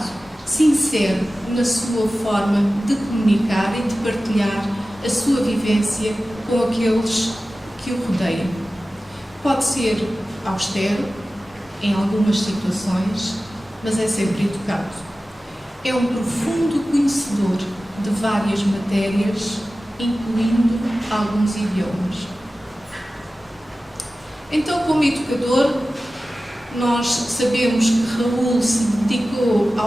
sincero na sua forma de comunicar e de partilhar a sua vivência com aqueles que o rodeiam. Pode ser austero em algumas situações, mas é sempre educado. É um profundo conhecedor de várias matérias, incluindo alguns idiomas. Então, como educador, nós sabemos que Raul se dedicou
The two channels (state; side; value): normal; both; correlation 0.96